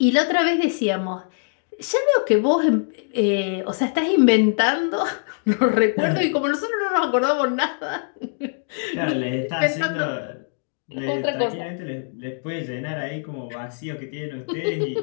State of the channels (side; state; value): right; silent; digital silence